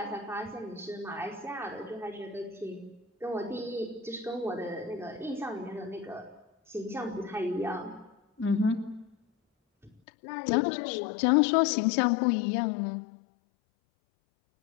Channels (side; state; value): right; drops out; at 9.9 s